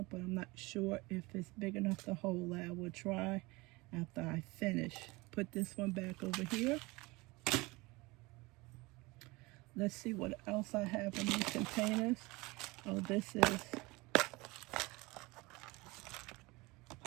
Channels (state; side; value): quieter; left; 23.4 dB